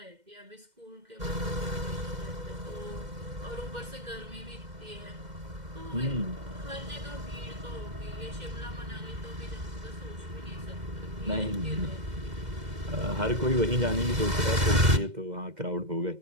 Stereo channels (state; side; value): late; left; 2.1 ms